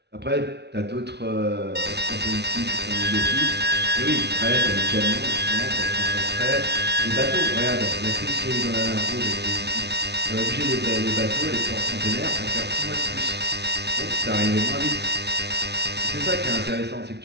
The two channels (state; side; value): late; left; 0.49 ms